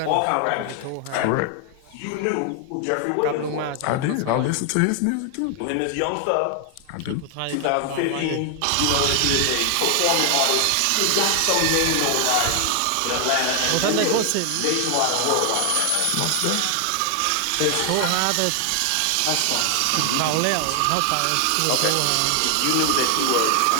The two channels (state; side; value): different; both; correlation 0.00